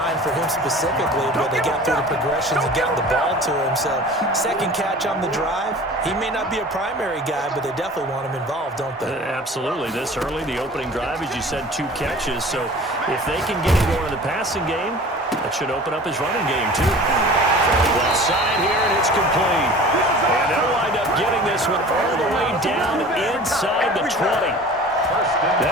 for him specifically, but they got through the progressions and got the ball to him. So, second catch on the drive. He may not be a primary guy, but they definitely want him involved, don't they? Absolutely. This early, the opening drive, as you said, 2 catches. So, if they can get him going in the passing game, that should open up his running game, too. Left side here, and it's complete. And they'll wind up getting this one all the way down inside the 20.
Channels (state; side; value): normal; both; correlation 0.42